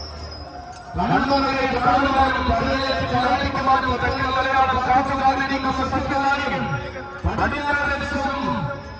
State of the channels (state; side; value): identical; both; correlation 1.00